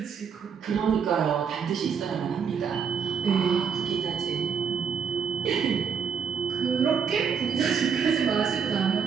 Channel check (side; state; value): left; quieter; 6.6 dB